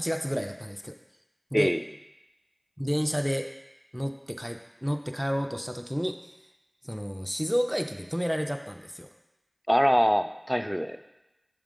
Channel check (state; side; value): identical; both; correlation 1.00